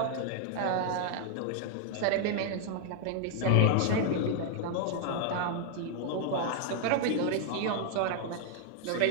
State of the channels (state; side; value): different; both; correlation 0.00